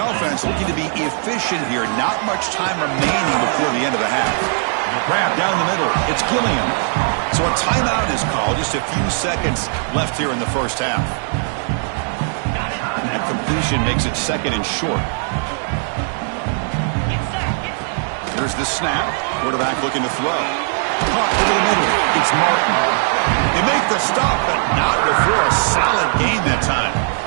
looking to be efficient here. Not much time remaining before the end of the half. Grab down the middle. It's Gilliam. So a timeout is called. Just a few seconds left here in the first half. And completion makes it 2nd and short. Here's the snap. Quarterback looking to throw. Caught over the middle. It's Martin. They make the stop, but not before a solid gain that time.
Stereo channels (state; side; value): silent; left; 60 dB below the other